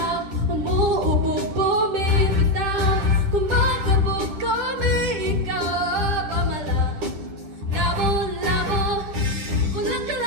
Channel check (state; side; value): late; left; 10 ms